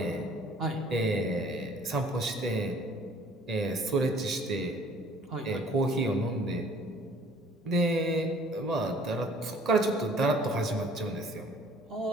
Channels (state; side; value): normal; both; correlation 0.55